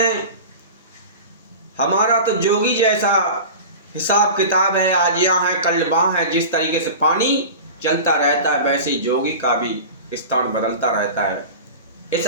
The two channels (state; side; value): inverted; both; correlation -0.33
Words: हमारा तो जोगी जैसा हिसाब किताब है, आज यहाँ है कल वहाँ है। जिस तरीके से पानी चलता रहता है वैसे ही जोगी का भी स्थान बदलता रहता है। इस